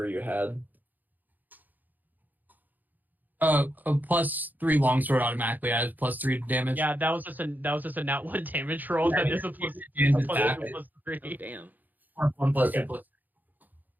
you had. A +3 longsword automatically adds +3 to damage. Yeah, that was just a nat 1 damage roll. That is a plus And a plus attack. 2 plus Oh 3. damn. 1 + 2 Okay. plus.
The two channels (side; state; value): left; late; 0.084 ms